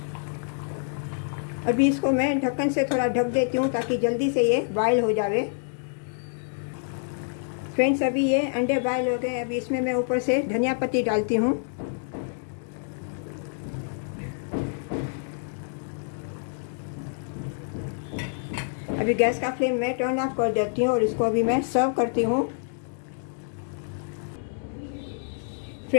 अभी इसको मैं ढक्कन से थोड़ा ढक देती हूँ ताकि जल्दी से ये बॉयल हो जावे। फ्रेंड्स, अभी ये अंडे बॉयल हो गए। अभी इसमें मैं ऊपर से धनिया पत्ती डालती हूँ। अभी गैस का फ्लेम मैं टर्न ऑफ कर देती हूँ और इसको अभी मैं सर्व करती हूँ।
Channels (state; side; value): silent; right; digital silence